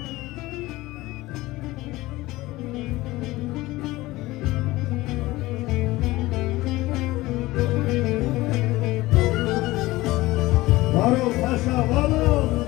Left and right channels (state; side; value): quieter; right; 19.0 dB